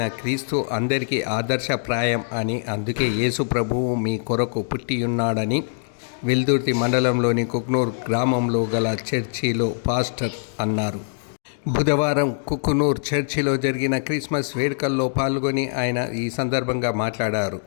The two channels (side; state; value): right; silent; digital silence